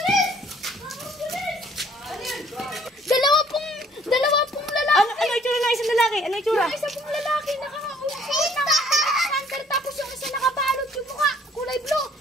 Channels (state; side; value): normal; both; correlation 0.59